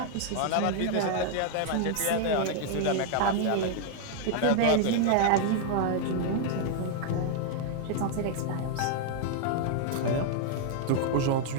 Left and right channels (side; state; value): both; different; correlation 0.00